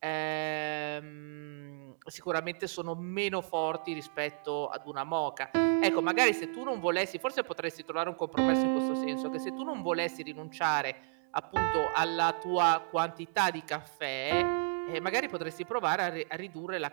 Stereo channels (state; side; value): silent; left; digital silence